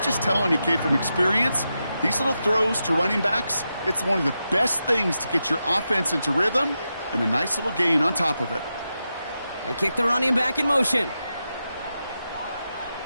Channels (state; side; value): inverted; both; correlation -0.88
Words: telling you, kid, from experience, these little throws to running backs, it's one of the best things to get your offense into rhythm and a nice little gain on top of it. They kick the running back in motion.